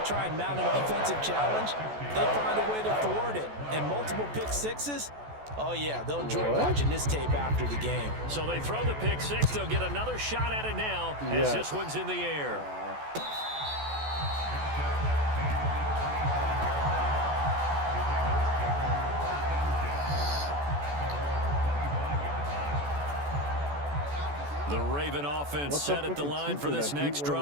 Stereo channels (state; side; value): late; left; 14 ms